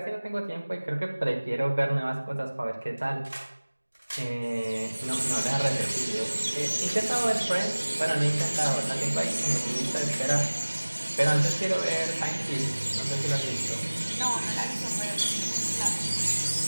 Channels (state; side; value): inverted; both; correlation -1.00